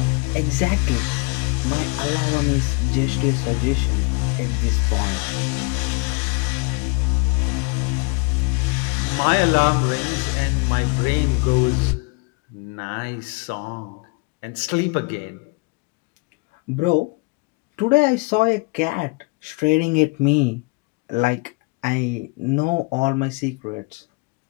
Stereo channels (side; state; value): right; quieter; 29.9 dB